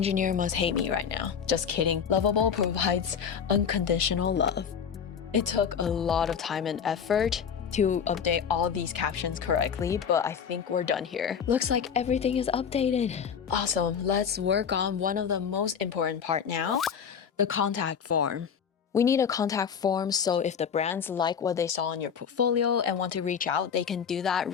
must hate me right now. Just kidding. Lovable provides unconditional love. It took a lot of time and effort to update all these captions correctly, but I think we're done here. Looks like everything is updated. Awesome, let's work on one of the most important part now, the contact form. We need a contact form so if the brands like what they saw in your portfolio and want to reach out, they can do that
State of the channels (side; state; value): right; quieter; 7.3 dB